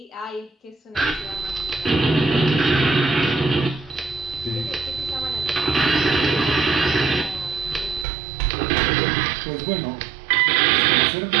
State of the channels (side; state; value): left; drops out; at 8.1 s